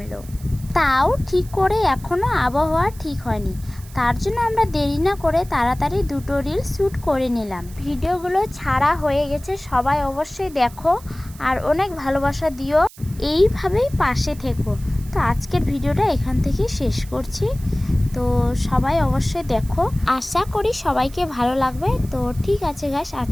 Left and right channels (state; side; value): noise; right; hiss, 21 dB below the sound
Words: তাও ঠিক করে এখনও আবহাওয়া ঠিক হয়নি, তার জন্য আমরা দেরি না করে তাড়াতাড়ি দুটো রিল শ্যুট করে নিলাম। ভিডিওগুলো ছাড়া হয়ে গেছে, সবাই অবশ্যই দেখো আর অনেক ভালোবাসা দিও, এইভাবেই পাশে থেকো। তো আজকের ভিডিওটা এখান থেকে শেষ করছি। তো সবাই অবশ্যই দেখো, আশা করি সবাইকে ভালো লাগবে। তো ঠিক আছে গাইস,